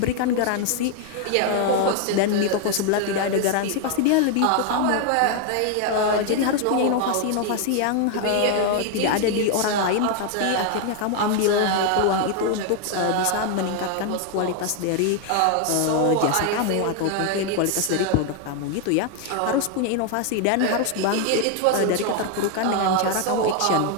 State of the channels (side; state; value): both; different; correlation 0.01